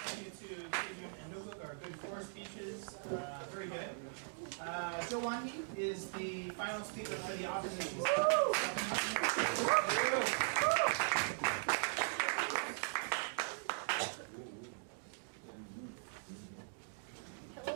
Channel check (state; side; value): silent; left; digital silence